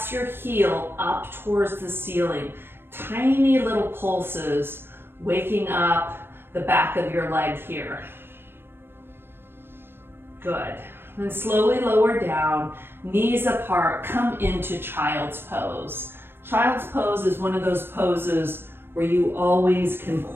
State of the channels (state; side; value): late; left; 0.10 ms